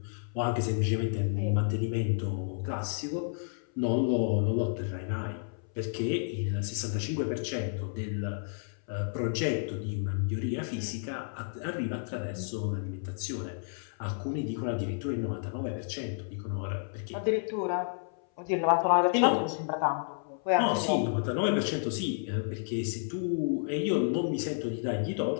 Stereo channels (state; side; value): silent; right; 57 dB below the other